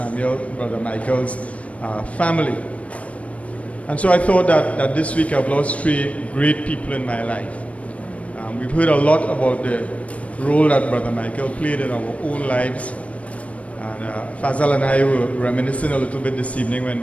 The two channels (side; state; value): right; late; 0.065 ms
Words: Michael's family. And so I thought that this week I've lost 3 great people in my life. We've heard a lot about the role that Brother Michael played in our own lives. And Fazal and I were reminiscing a little bit this evening